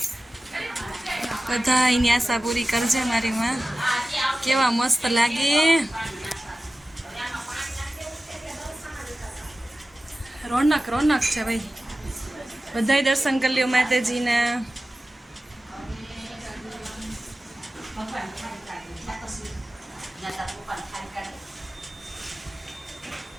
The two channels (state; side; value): normal; both; correlation 0.96